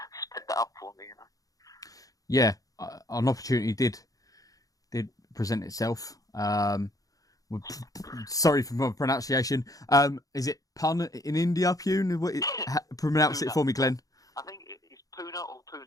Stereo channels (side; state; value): right; late; 0.17 ms